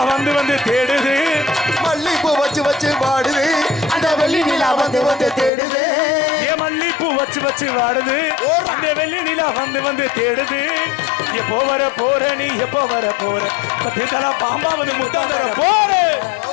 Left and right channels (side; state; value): right; drops out; at 5.5 s